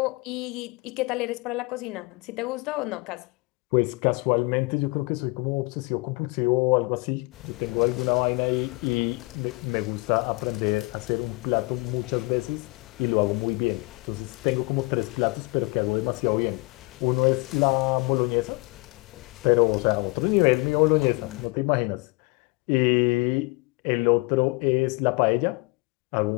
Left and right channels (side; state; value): right; quieter; 26.5 dB